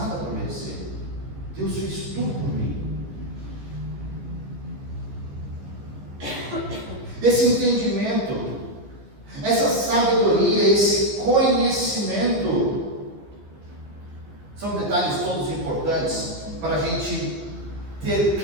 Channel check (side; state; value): left; late; 15 ms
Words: para merecer. Deus fez tudo por mim. Esse entendimento, essa sabedoria, esse conhecimento, são detalhes todos importantes para a gente ter